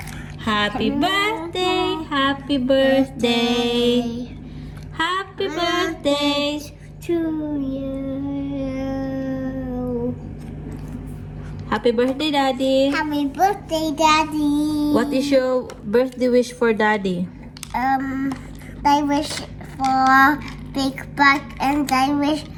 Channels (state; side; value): identical; both; correlation 1.00